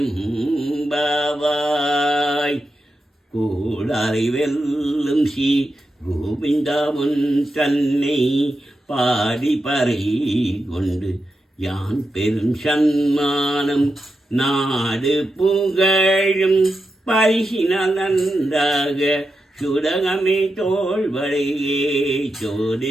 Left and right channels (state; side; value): normal; both; correlation 0.88